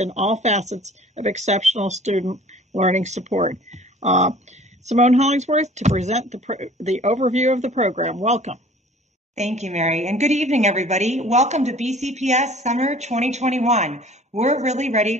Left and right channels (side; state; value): both; normal; correlation 0.49